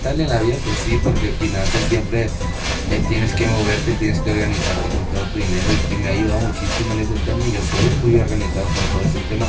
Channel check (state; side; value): identical; both; correlation 1.00